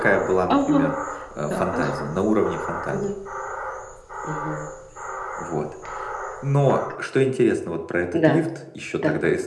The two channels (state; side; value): identical; both; correlation 1.00